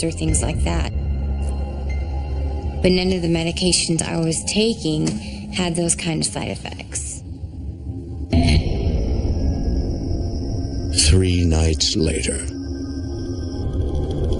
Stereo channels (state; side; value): identical; both; correlation 1.00